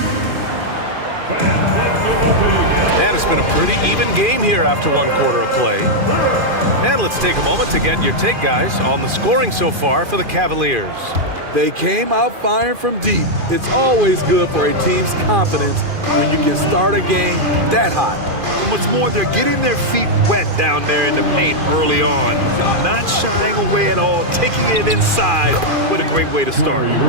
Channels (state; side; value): late; left; 2.4 ms